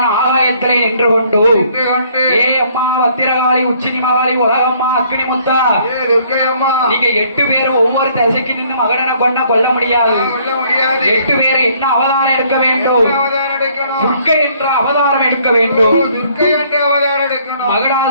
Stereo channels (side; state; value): both; inverted; correlation -0.62